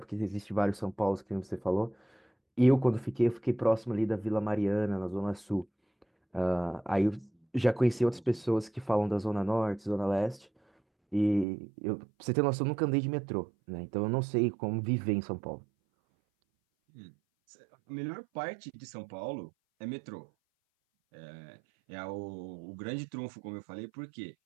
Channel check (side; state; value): left; drops out; at 11.5 s